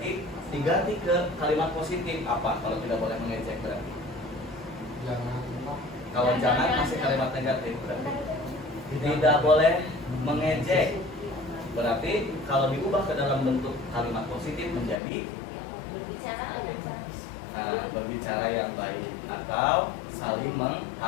diganti ke kalimat positif. Apa kalau tidak boleh mengejek berarti? Kalau jangan masih kalimat negatif berarti. Tidak boleh mengejek, berarti kalau diubah ke dalam bentuk kalimat positif menjadi berbicara yang baik atau saling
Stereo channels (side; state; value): right; drops out; at 15.0 s